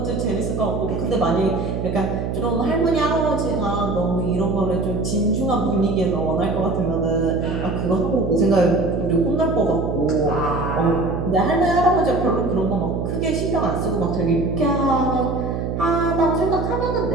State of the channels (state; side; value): noise; right; hum, 3 dB below the sound